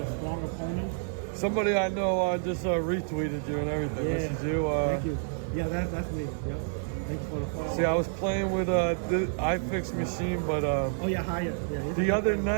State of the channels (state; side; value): silent; left; digital silence